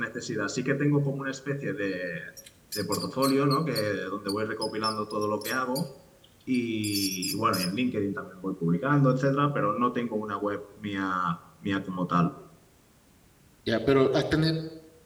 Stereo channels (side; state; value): both; identical; correlation 1.00